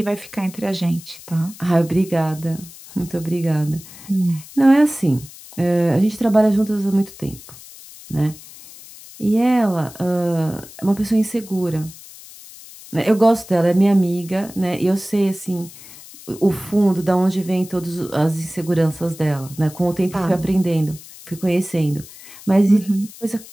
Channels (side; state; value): left; noise; hiss, 18 dB below the sound